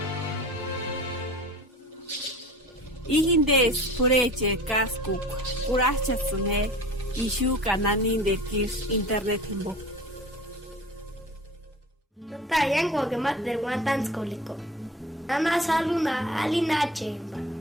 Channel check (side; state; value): both; normal; correlation 0.39